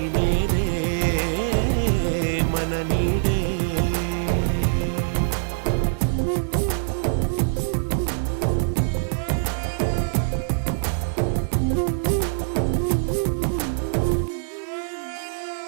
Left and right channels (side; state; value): left; silent; digital silence